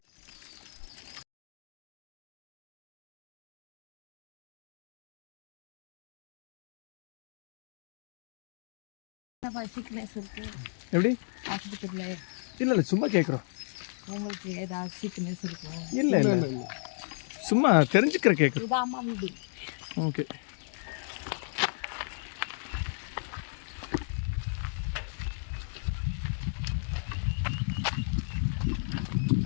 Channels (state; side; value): silent; right; digital silence